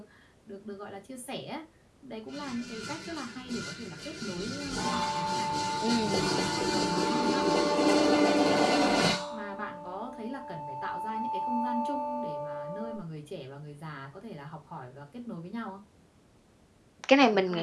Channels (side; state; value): both; identical; correlation 1.00